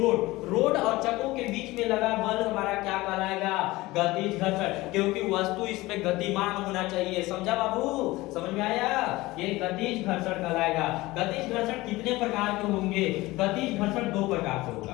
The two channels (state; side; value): quieter; right; 19.8 dB